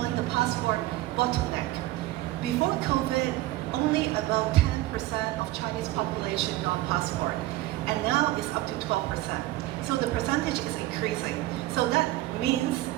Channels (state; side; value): quieter; left; 16.8 dB